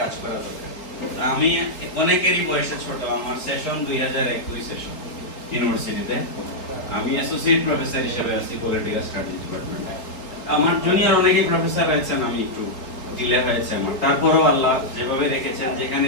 কাজ করা দরকার। আমি অনেকেরই বয়সে ছোট, আমার সেশন 2021 সেশন ইউনিভার্সিটিতে। আমি অ্যাসোসিয়েট প্রফেসর হিসেবে আছি পলিটিক্যাল স্টাডিজ ডিপার্টমেন্টে। আমার জুনিয়র অনেকেই প্রফেসর হয়েছেন, আমি একটু ডিলে হয়েছে আমার। তারপরেও আল্লাহ যেভাবে রেখেছেন, যেখানে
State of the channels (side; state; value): right; late; 3.8 ms